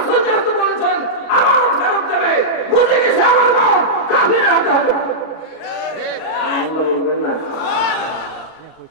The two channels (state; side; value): late; right; 39 ms